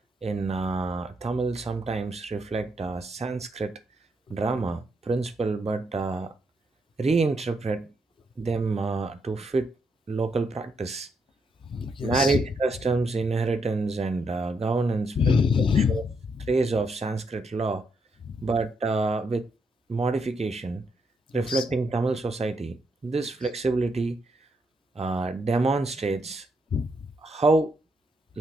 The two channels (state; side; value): normal; both; correlation 0.78